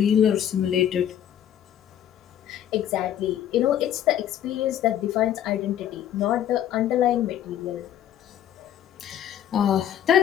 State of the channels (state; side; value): quieter; right; 10.5 dB